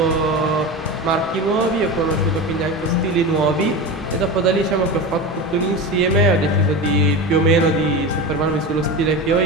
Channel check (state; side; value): normal; both; correlation 0.25